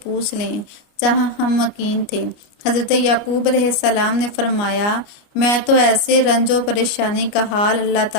لیں جہاں ہم مقیم تھے۔ حضرت یعقوب علیہ السلام نے فرمایا، میں تو ایسے رنج و پریشانی کا حال اللہ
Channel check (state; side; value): late; right; 29 ms